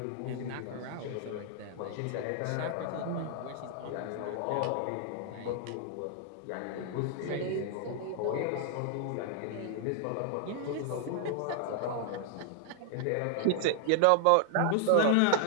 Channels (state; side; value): different; both; correlation 0.00